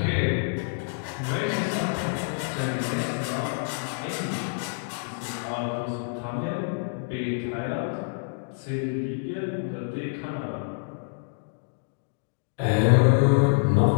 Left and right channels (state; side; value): silent; right; digital silence